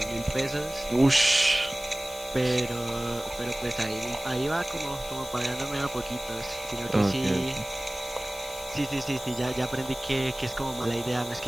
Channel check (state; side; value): noise; left; hiss, 14 dB below the sound